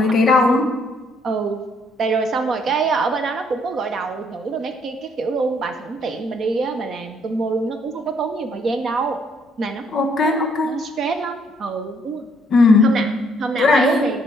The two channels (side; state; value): both; normal; correlation 0.68